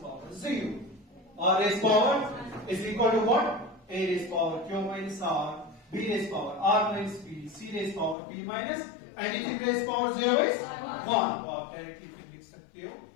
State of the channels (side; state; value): right; drops out; at 8.2 s